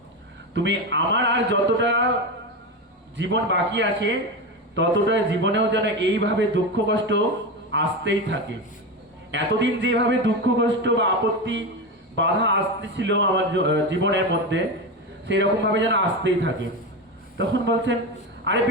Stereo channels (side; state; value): both; normal; correlation 0.18